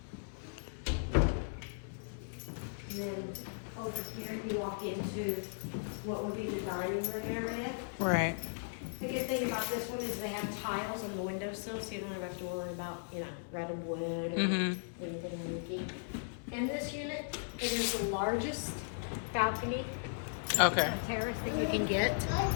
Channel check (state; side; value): silent; right; 53 dB below the other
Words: And then over here you walk into what would be the dining room area. Right. The good thing about this one is they have tiles on the windowsill, so you don't have to worry about, you know, red and wood or anything leaky. In this unit, it is the largest balcony terrace that you can get.